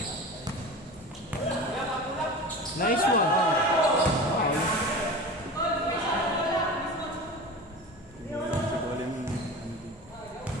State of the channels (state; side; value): normal; both; correlation 0.33